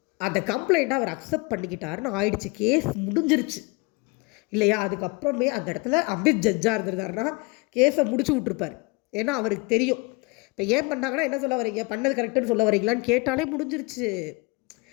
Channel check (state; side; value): quieter; right; 27.6 dB